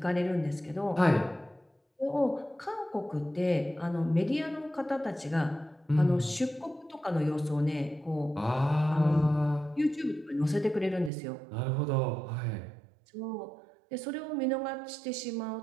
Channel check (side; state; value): left; drops out; at 11.1 s